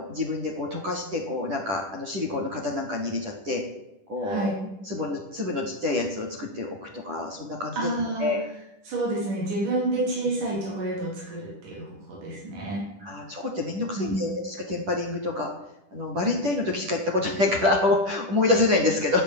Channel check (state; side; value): late; left; 10 ms